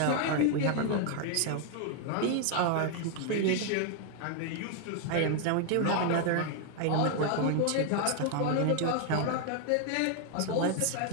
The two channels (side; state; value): both; different; correlation 0.00